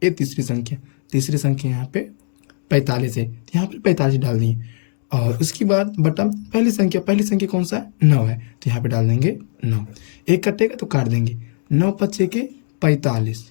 ये तीसरी संख्या यहाँ पे 45 है, तो यहाँ पे 45 डाल दिए और उसके बाद बटा पहली संख्या कौन सा है 9 है, तो यहाँ पे डाल देंगे 9। एक कटेगा तो काट देंगे, 9 पच्चे के 45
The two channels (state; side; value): silent; right; digital silence